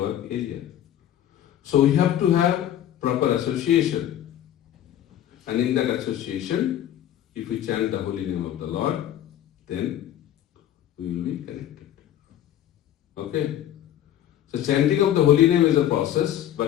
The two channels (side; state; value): right; quieter; 11.4 dB